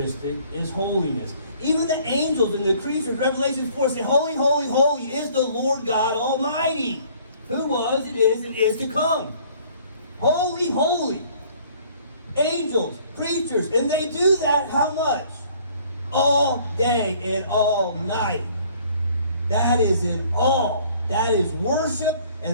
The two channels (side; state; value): both; inverted; correlation -0.57